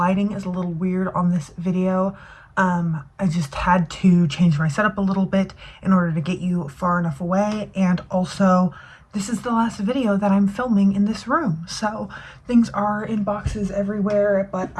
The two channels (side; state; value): both; identical; correlation 1.00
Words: is a little weird on this video. I just had to change my setup a little bit in order to get you far enough away, and also this is the last video that I'm filming in this room, so things are in boxes everywhere, but